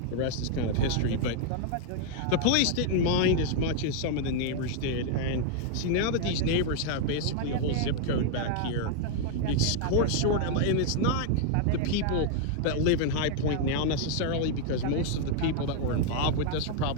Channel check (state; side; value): different; both; correlation 0.00